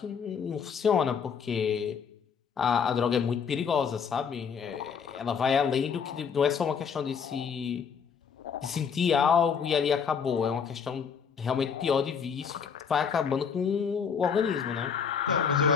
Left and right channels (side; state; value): right; quieter; 6.7 dB